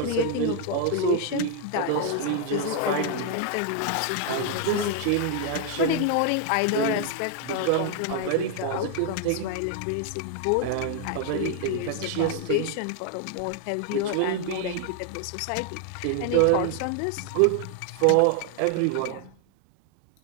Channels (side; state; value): both; different; correlation 0.00